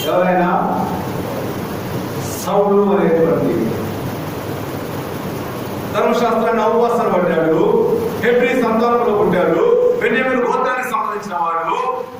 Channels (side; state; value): both; identical; correlation 1.00